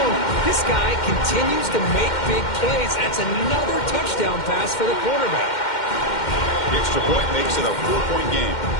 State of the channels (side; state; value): right; late; 2.1 ms